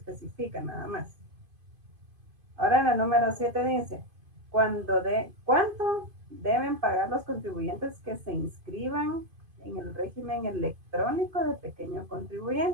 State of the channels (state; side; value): late; left; 2.5 ms